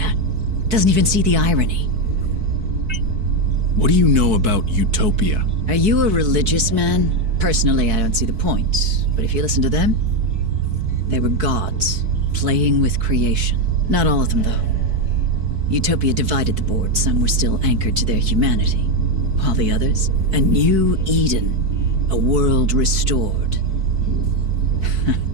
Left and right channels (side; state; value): left; late; 4.6 ms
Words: Doesn't even see the irony. What do you know about Utopia? Are you a religious man? Personally, I don't see the point. But if you listen to them, they were gods, playing with creation. Not all of them, though. Utopia divided the board. Some were still anchored to their humanity. While the others, a new Eden, a world restored.